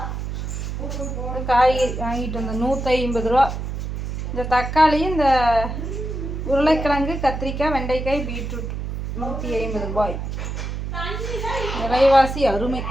காய்கறி வாங்கிட்டு வந்தேன் 150 ரூபா. இந்த தக்காளி, இந்த உருளைக்கிழங்கு, கத்திரிக்காய், வெண்டைக்காய், பீட்ரூட் 150 ரூபாய். விலைவாசி அருமை.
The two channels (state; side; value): noise; right; hum, 5 dB below the sound